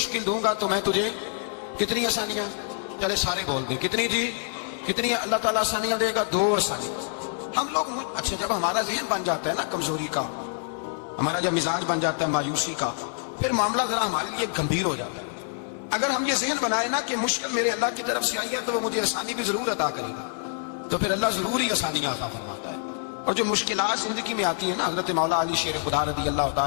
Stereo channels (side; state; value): right; silent; 61 dB below the other